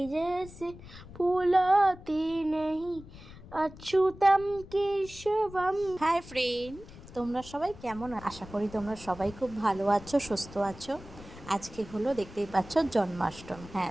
जैसे फूलाते नहीं, अच्युतम केशवम। হাই ফ্রেন্ড, তোমরা সবাই কেমন? আশা করি তোমরা সবাই খুব ভালো আছো, সুস্থ আছো। আজকে হলো দেখতেই পাচ্ছ জন্মাষ্টমী। হ্যাঁ,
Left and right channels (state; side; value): noise; left; rumble, 17 dB below the sound